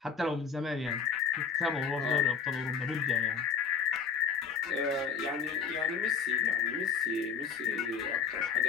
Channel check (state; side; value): quieter; right; 6.2 dB